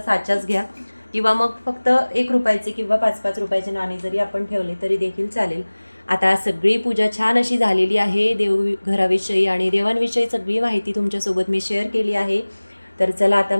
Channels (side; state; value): both; inverted; correlation -1.00